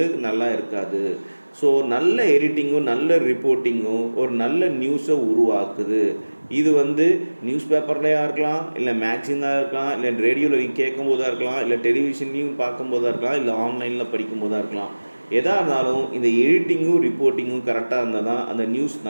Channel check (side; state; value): both; inverted; correlation -1.00